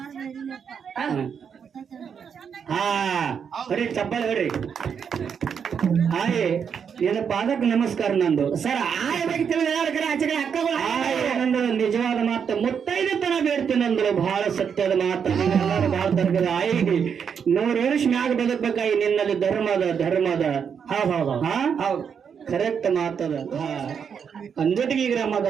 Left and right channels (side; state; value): left; quieter; 7.1 dB